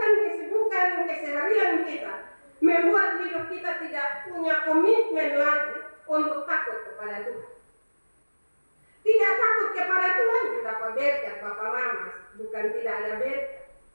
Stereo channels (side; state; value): both; inverted; correlation -1.00